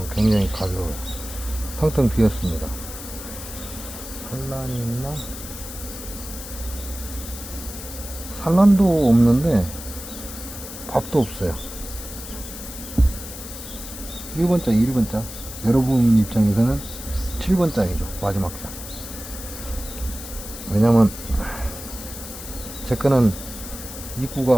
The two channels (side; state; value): left; noise; hiss, 11 dB below the sound